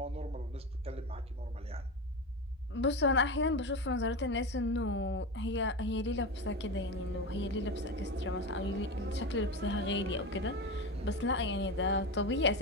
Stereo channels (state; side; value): normal; both; correlation 0.21